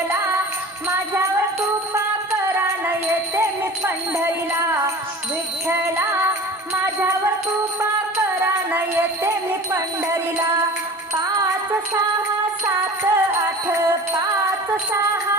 माझ्यावर कृपा करा न येते मी पंढरीला. विठ्ठला माझ्यावर कृपा करा न येते मी पंढरीला. 5 6 7 8, 5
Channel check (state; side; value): normal; both; correlation 0.39